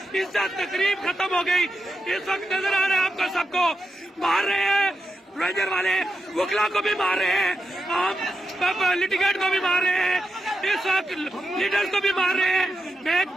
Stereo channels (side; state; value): both; normal; correlation 0.87